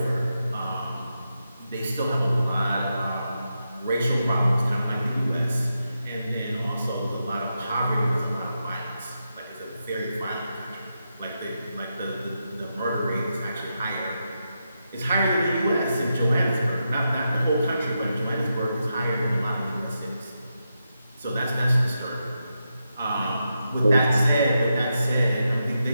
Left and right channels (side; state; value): both; inverted; correlation -0.86